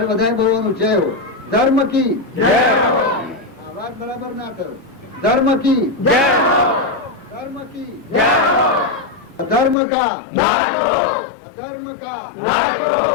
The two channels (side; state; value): right; drops out; at 9.8 s